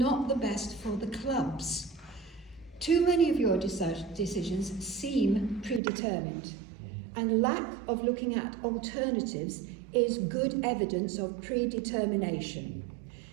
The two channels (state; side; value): drops out; left; at 5.8 s